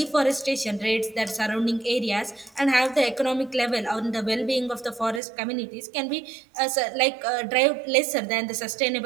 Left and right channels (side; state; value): left; drops out; at 5.2 s